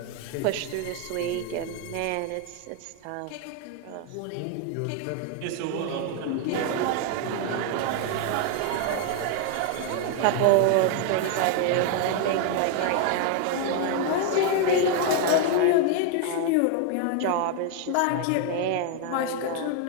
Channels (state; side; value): different; both; correlation 0.01